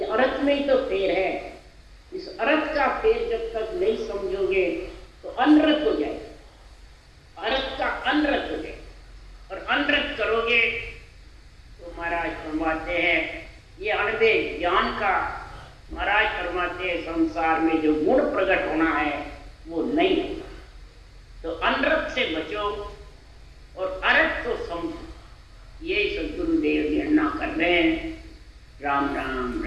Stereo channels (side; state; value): both; identical; correlation 1.00